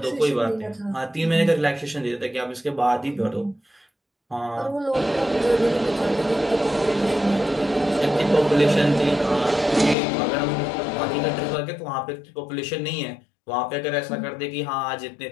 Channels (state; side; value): drops out; right; at 10.0 s